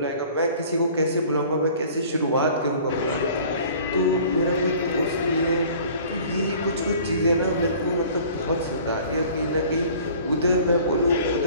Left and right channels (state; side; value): inverted; both; correlation -0.49